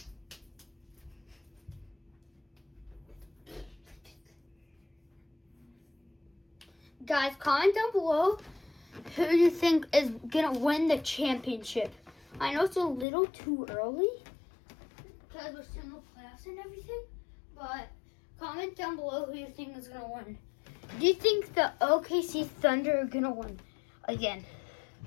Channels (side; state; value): right; drops out; at 13.1 s